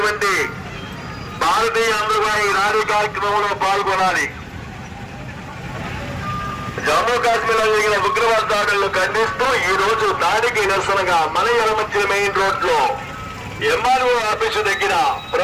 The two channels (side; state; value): both; identical; correlation 1.00